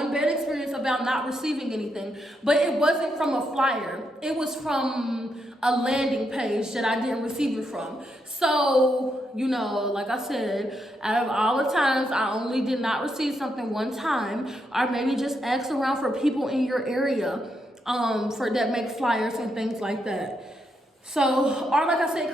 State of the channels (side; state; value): both; normal; correlation 0.80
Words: bad experience about not receiving anything, but it wasn't from a flyer. It was from a landing page that I didn't receive it from. So, you know, like I said, out of all the times, I only did not receive something one time, or maybe just ask around for people in your area for that make flyers and things like that. So, or like I said,